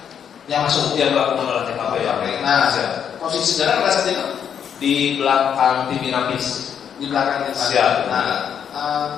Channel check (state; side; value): quieter; right; 8.2 dB